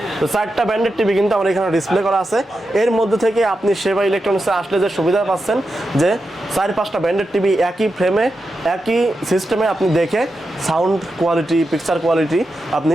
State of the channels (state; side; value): normal; both; correlation 0.89